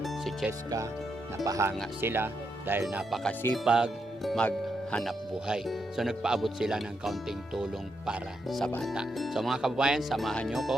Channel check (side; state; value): both; normal; correlation 0.82